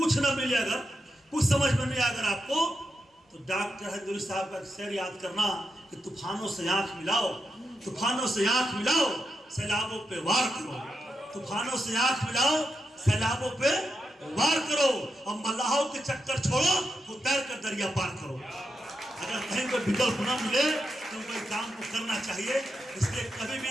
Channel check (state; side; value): normal; both; correlation 0.86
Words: न मिले, अगर कुछ समझ में नहीं आए अगर आपको, तो डॉक्टर हजूरी साहब का शेर याद करना कि तूफानों से आंख मिलाओ, तूफानों से आंख मिलाओ, सैलाबों पे वार करो। तूफानों से आंख मिलाओ, सैलाबों पे वार करो, और मल्लाहों के चक्कर छोड़ो, तो तैर कर दरिया पार करो। अगर कहीं कोई विकल्प न मिले तो कोई काम को करना चाहिए। इसलिए कभी